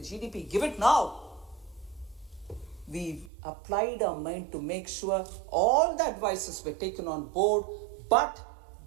GDP. Give it now. We applied our mind to make sure all the advices were taken on board, but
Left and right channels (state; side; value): drops out; left; at 3.3 s